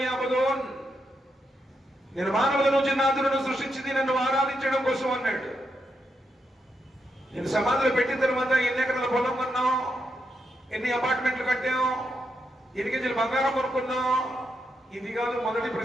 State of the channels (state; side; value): normal; both; correlation 0.83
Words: నేను మానవుల నుంచి జిన్నాతులను సృష్టించింది నన్ను ఆరాధించడం కోసం అన్నాడు. నేను సమాధిలో పెట్టిన తర్వాత ఎన్ని ఎకరాల పొలం కొన్నాం, ఎన్ని అపార్ట్మెంట్లు కట్టాం, ఎన్ని కేజీలు బంగారం కొనుక్కున్నాం, ఇది కాదు మొదటి